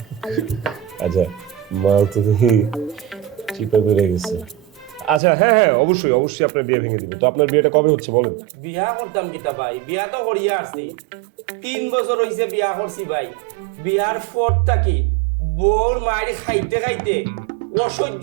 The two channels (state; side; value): drops out; left; at 5.2 s